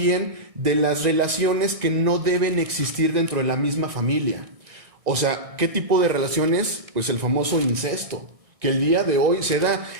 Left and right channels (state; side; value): late; left; 1.6 ms